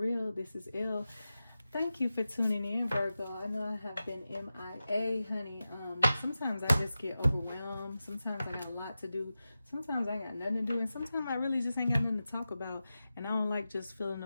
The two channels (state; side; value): inverted; both; correlation -0.93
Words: This is Elle. Thank you for tuning in, Virgo. I know I have been MIA, honey. Sometimes I just get overwhelmed. Sometimes I got a lot to do. Sometimes I got nothing to do. And sometimes I really just ain't got nothing to talk about. And I don't like just filling